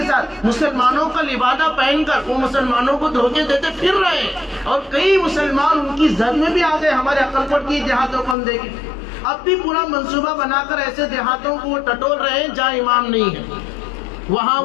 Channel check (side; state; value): right; drops out; at 8.3 s